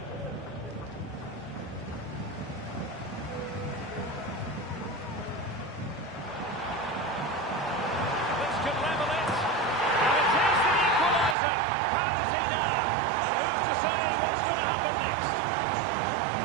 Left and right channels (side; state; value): left; drops out; at 11.4 s